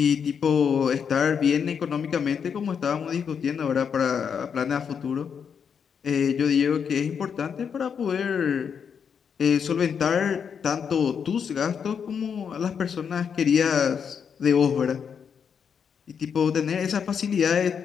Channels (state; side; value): quieter; right; 7.0 dB